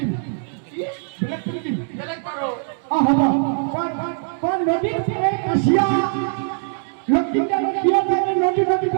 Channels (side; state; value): left; silent; digital silence